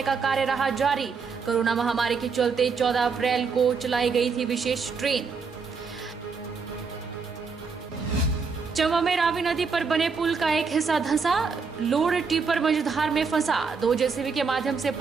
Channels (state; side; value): quieter; left; 5.2 dB